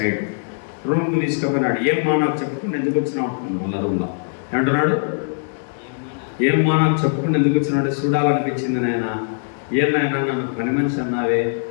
రూమ్కి తీసుకుపోయినాడు. ఏమ్మా నాకు చెప్పుకుని ఎందుకు వచ్చినావు అంటున్నాడు. వాళ్ళ రూమ్లో ఏమంటున్నాడు? ఏమ్మా నాకు చెప్పుకుని ఎందుకు వచ్చినాడు? చూడాలనిపించింది నాయన. ఏమైనా నన్ను పని మనిషి అన్నావే,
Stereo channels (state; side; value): silent; right; digital silence